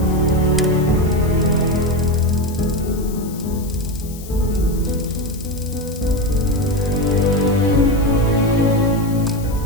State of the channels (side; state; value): left; noise; hiss, 17 dB below the sound